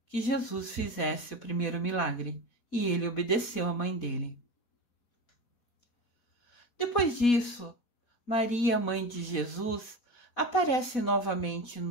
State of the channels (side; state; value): right; late; 4.1 ms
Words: que Jesus fizesse o primeiro milagre. E ele obedeceu à mãe dele. Depois disso, Maria, mãe de Jesus, aparece novamente